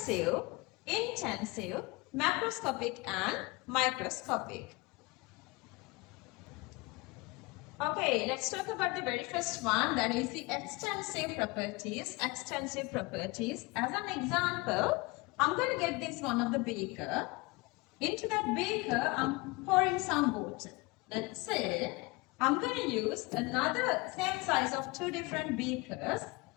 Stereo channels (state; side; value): quieter; right; 24.7 dB